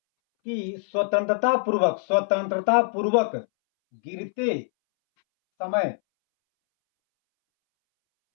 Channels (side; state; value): right; silent; 63 dB below the other